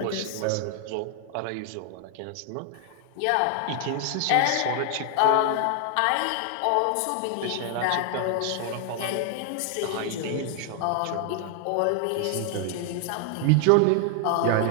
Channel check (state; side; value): different; both; correlation 0.00